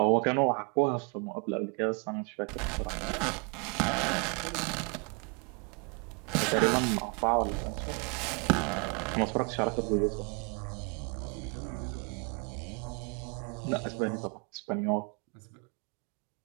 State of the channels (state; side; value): quieter; left; 34.2 dB